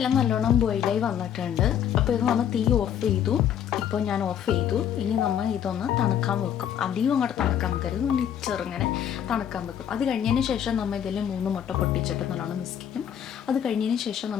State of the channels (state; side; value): quieter; right; 9.4 dB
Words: നല്ലോണം ബോയിലായി വന്നിട്ടുണ്ട്. അപ്പോൾ ഇത് നമ്മൾ തീ ഓഫ് ചെയ്തു. ഇപ്പോൾ ഞാൻ ഓഫ് ചെയ്തു. ഇനി നമ്മൾ ഇതൊന്ന് തണുക്കാൻ വെക്കും. അധികം അങ്ങോട്ട് തണുക്കാൻ വെക്കരുത്, ഒന്ന് ചെറുങ്ങനെ തണുക്കാൻ വെക്കും. അത് കഴിഞ്ഞതിന് ശേഷം നമ്മൾ ഇതിൽ 3 മുട്ട പൊട്ടിച്ചിട്ട് നല്ലോണം മിക്സ് ചെയ്യും. അത് കഴിഞ്ഞതിന് ശേഷം